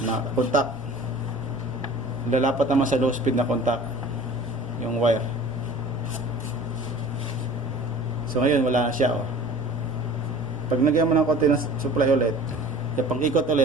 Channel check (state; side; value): noise; right; rumble, 22 dB below the sound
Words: contact. Lalapat naman sa low speed na contact yung wire. So ngayon wala na siya Pag nagyan mo ng konti ng supply ulit, pag ikot